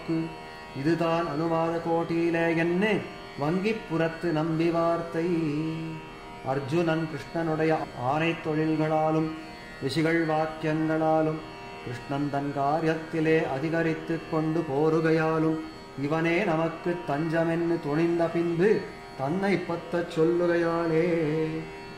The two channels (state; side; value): identical; both; correlation 1.00